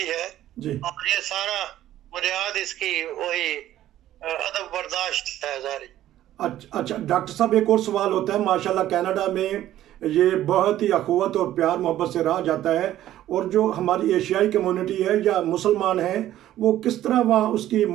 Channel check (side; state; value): left; quieter; 13.1 dB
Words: है और ये सारा बुनियाद इसकी वही अदब बर्दाश्त है सारी। अच्छा डॉक्टर साहब, एक और सवाल होता है। माशाल्लाह कनाडा में ये बहुत ही अखुवत और प्यार मोहब्बत से रहा जाता है, और जो हमारी एशियाई कम्युनिटी है या मुसलमान हैं वो किस तरह वहाँ उसकी